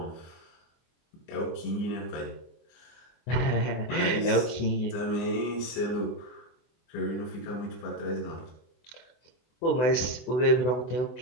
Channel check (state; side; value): late; right; 24 ms